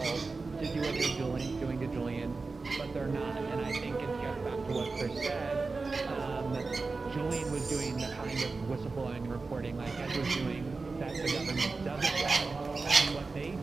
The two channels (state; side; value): quieter; left; 4.0 dB